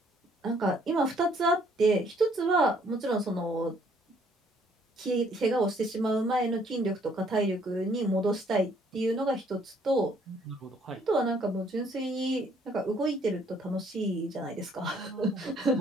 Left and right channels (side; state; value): both; normal; correlation 0.64